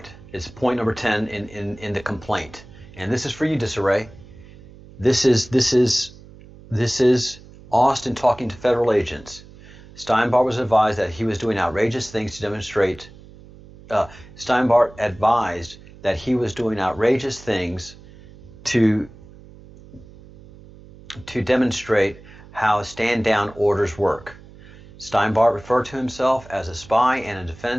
it's point number 10 in the complaint. And this is for you, Disarray. This is Austin talking to federal agents. Steinbart was advised that he was doing outrageous things to demonstrate. Steinbart advised that he was doing outrageous things to demonstrate how stand-down orders work. Steinbart referred to himself as a spy and a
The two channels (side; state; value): right; noise; hum, 21 dB below the sound